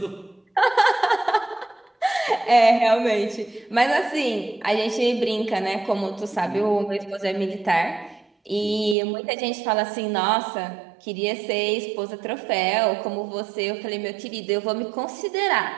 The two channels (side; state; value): left; drops out; at 9.0 s